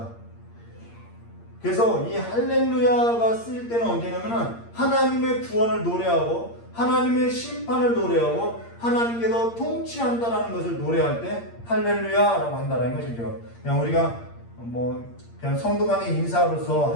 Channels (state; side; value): late; right; 8.6 ms